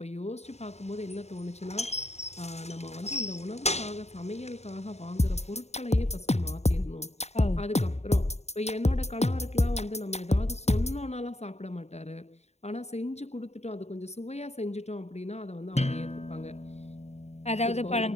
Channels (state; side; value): late; right; 0.32 ms